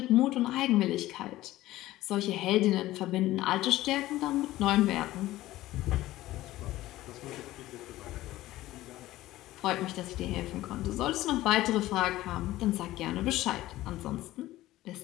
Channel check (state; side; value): quieter; right; 16.1 dB